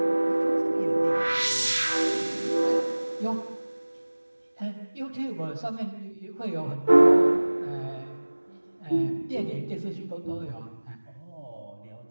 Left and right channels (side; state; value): both; inverted; correlation -1.00